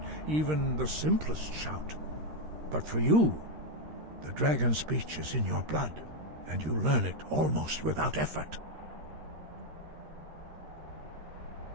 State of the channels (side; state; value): left; late; 13 ms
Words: even the simplest shout. But for you, the dragon speech is in your blood, and you learn it almost without effort.